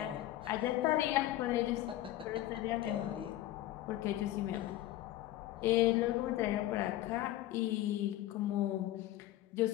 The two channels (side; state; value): right; quieter; 14.7 dB